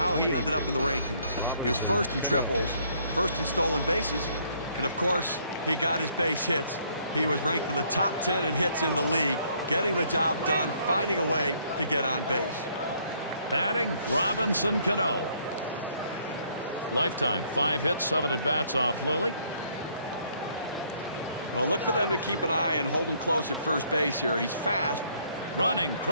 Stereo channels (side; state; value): both; inverted; correlation -0.66